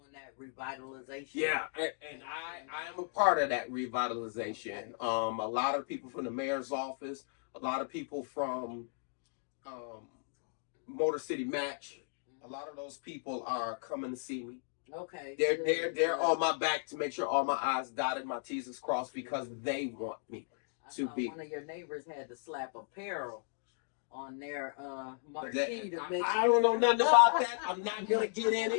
that revitalization. Yeah, and I am a part of that revitalization. A lot of people from the mayor's office, a lot of people from Motor City Match, a lot of those people are coming to see me. Okay. They're good. on my back to make sure all my I's dotted, my T's is crossed because they want me I to saw be. one of your neighbors had to slap apparel on their But marquee to make I don't know nothing about that. I'm not gonna get in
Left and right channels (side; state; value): right; silent; digital silence